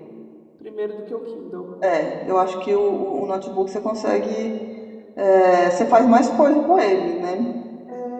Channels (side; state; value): both; identical; correlation 1.00